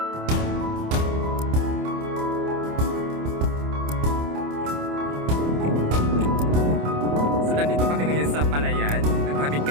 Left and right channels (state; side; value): late; left; 27 ms